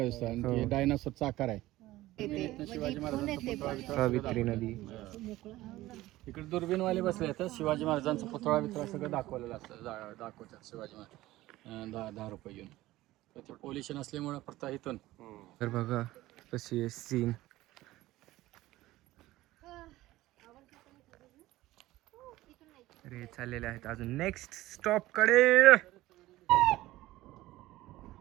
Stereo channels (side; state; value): left; quieter; 16.9 dB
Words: दिसतो आणि डायनासोरचा आकार आहे. शिवाजी महाराजांचा सावित्री नदी इकडे दुर्बीनवाले बसले तर शिवाजी महाराजांचा पुतळा बितळा सगळं दाखवलेलं असतं. दाखवतात शिवाजी महाराज 10 रुपये घेऊन. तर ते पोल्युशन असल्यामुळे फक्त इथून. तर बघा कशी आहे सीन. अरे चाललेले आहेत अजून नेक्स्ट स्टॉप कडे.